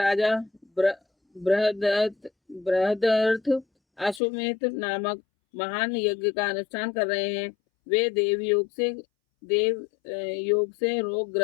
बृहदर्थ अश्वमेध नामक महान यज्ञ का अनुष्ठान कर रहे हैं। वे देव योग से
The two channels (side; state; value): right; drops out; at 4.2 s